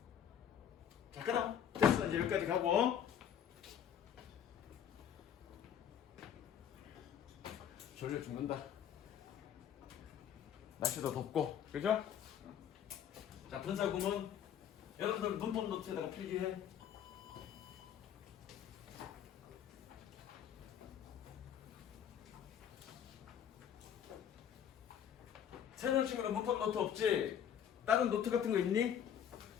자, 그럼 됐어. 이제 여기까지 가고 졸려 죽는다. 날씨도 덥고, 그죠? 자, 분사구문 여러분들 문법 노트에다가 필기해. 새로운 친구는 문법 노트 없지? 다른 노트 같은 거 있니?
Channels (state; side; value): quieter; right; 9.1 dB